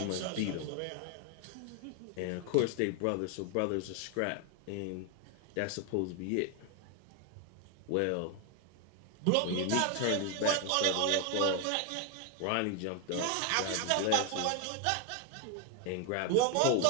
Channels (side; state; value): both; different; correlation 0.01